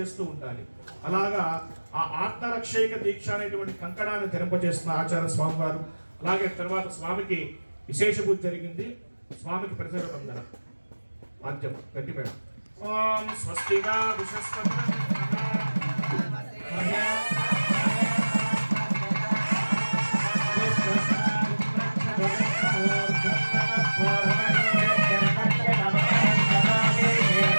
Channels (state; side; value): inverted; both; correlation -1.00